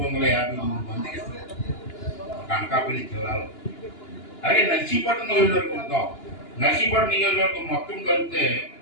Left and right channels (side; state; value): right; late; 2.9 ms